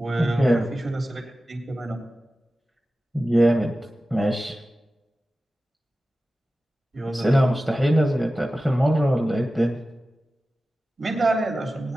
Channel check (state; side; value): normal; both; correlation 0.95